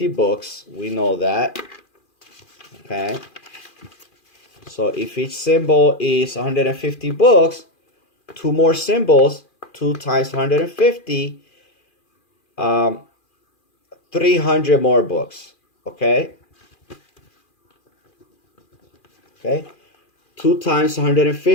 books. We know that. Okay. So if each symbol is 150 books, 2 more symbols, 2 times 150, 300 more books. Okay. Okay. 2 times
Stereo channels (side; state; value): right; late; 2.4 ms